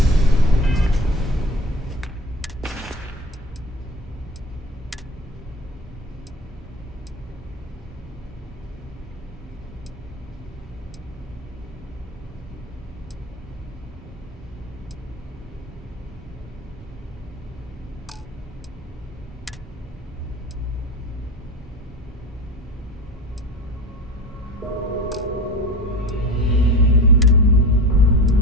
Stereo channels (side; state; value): both; normal; correlation 0.32